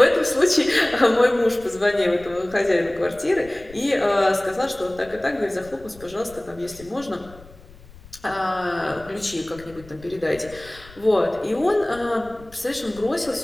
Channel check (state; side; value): noise; left; rumble, 22 dB below the sound